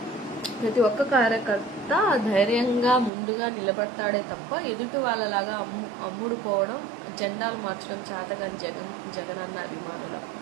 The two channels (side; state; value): left; drops out; at 3.1 s